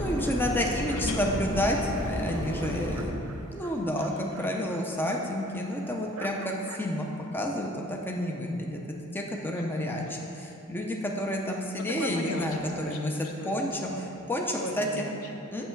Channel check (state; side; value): normal; both; correlation 0.54